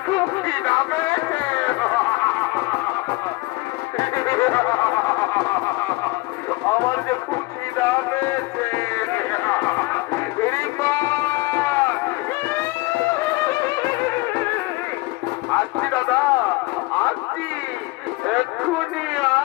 খুব খিদা পেয়েছে। আমার যে খুব খিদা পেয়েছে। আসছি দাদা, আসছি, এক্ষুনি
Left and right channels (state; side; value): quieter; right; 22.6 dB